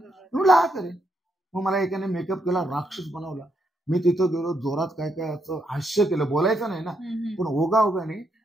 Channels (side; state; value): both; normal; correlation 0.78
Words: म्हणलं हा करेन. मग मला एकाने मेकअप केला, राक्षस बनवला. मी तिथं गेलो, जोरात काय काय असं हास्य केलं, बोलायचं नाही ना, पण ओघाने